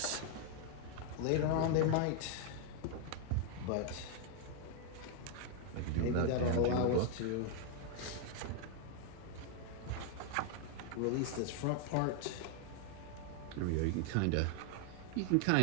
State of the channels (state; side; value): different; both; correlation 0.00